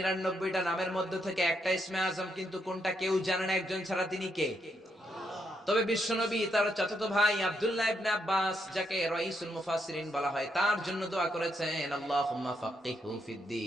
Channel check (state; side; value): normal; both; correlation 0.78